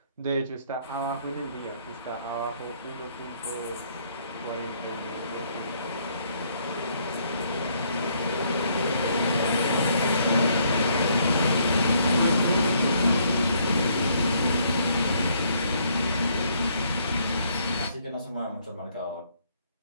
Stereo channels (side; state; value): both; inverted; correlation -0.68